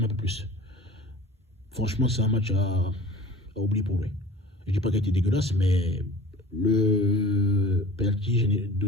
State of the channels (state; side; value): normal; both; correlation 0.42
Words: un peu plus. Franchement, c'est un match à oublier pour lui. Je ne dis pas qu'il a été dégueulasse, mais le penalty